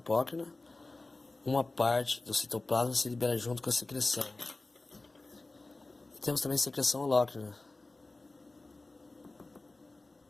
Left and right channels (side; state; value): right; quieter; 3.2 dB